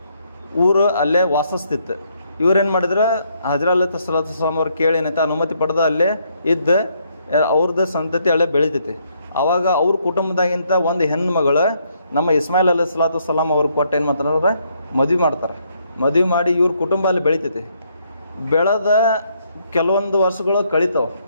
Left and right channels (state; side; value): inverted; both; correlation -0.72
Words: ಊರು ಅಲ್ಲೇ ವಾಸಿಸ್ತಿತ್ತು. ಇವ್ರೇನು ಮಾಡಿದ್ರೆ ಹಜ್ರಾ ಅಲೈಹಿಸ್ಸಲಾತು ವಸ್ಸಲಾಮ್ ಅವ್ರು ಕೇಳಿ ಏನೈತೆ ಅನುಮತಿ ಪಡೆದ ಅಲ್ಲೇ ಇದ್ದು ಅವ್ರದ್ದು ಸಂತತಿ ಅಲ್ಲೇ ಬೆಳಿತೈತಿ. ಆವಾಗ ಅವ್ರ ಕುಟುಂಬದಾಗಿಂತ ಒಂದು ಹೆಣ್ಣು ಮಗಳು ನಮ್ಮ ಇಸ್ಮಾಯಿಲ್ ಅಲೈಹಿಸ್ಸಲಾತು ವಸ್ಸಲಾಮ್ ಅವ್ರಿಗೆ ಕೊಟ್ಟು ಏನು ಮಾಡ್ತಾರೆ? ಮದುವೆ ಮಾಡ್ತಾರೆ. ಮದುವೆ ಮಾಡಿ ಇವ್ರ ಕುಟುಂಬ ಅಲ್ಲಿ ಬೆಳಿತೈತಿ. ಬೆಳೆದ ಕೆಲವೊಂದು ವರ್ಷಗಳು ಕಳೀತಾವೆ.